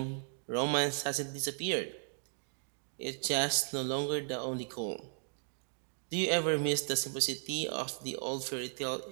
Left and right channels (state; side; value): silent; left; digital silence